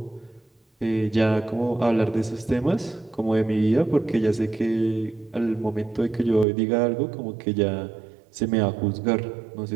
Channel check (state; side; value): drops out; left; at 6.5 s